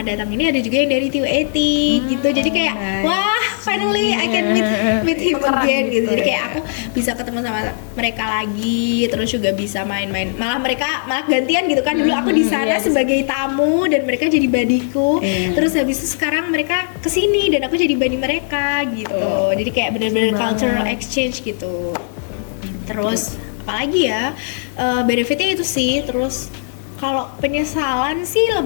datang ini ada juga yang dari TUAT gitu. Jadi kayak wah, finally I can meet him again gitu. Jadi kayak aku bisa ketemu sama mereka lagi, terus juga bisa main-main. Malah gantian gitu kan. Dulu aku di sana sebagai tamu dan mereka jadi badiku. Terus habis itu sekarang mereka kesini dan aku jadi badi mereka gitu. Jadi kayak bener-bener cultural exchange gitu. Terus apalagi ya, benefitnya itu sih. Terus kalau penyesalan sih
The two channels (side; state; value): right; silent; digital silence